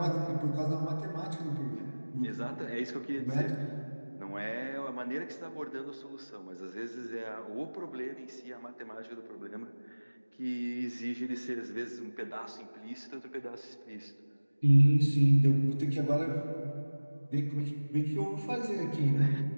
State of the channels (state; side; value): inverted; both; correlation -1.00